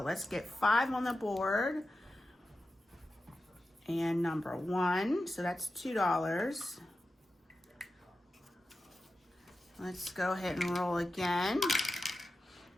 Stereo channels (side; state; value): both; normal; correlation 0.92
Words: let's get 5 on the board. And number 1. So that's $2. Let's go ahead and roll again.